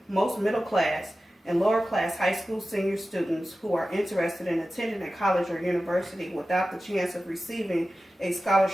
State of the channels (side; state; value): both; normal; correlation 0.94